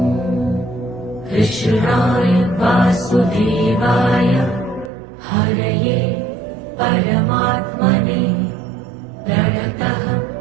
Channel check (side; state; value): left; drops out; at 4.9 s